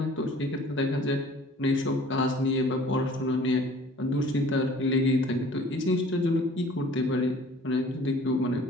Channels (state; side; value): normal; both; correlation 0.50